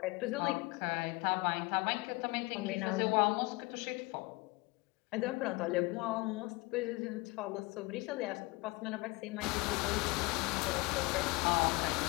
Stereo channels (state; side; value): quieter; right; 24.1 dB